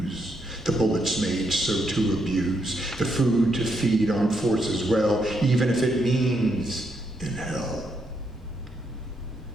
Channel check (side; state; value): both; normal; correlation 0.78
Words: the bullets made so to abuse, the food to feed armed forces well, even if it means in hell.